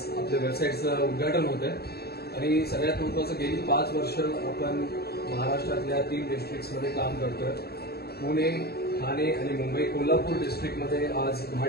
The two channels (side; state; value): right; late; 0.46 ms